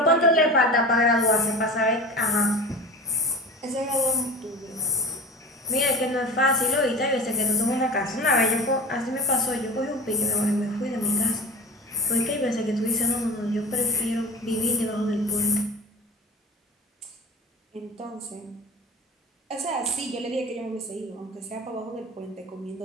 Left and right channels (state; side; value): normal; both; correlation 0.33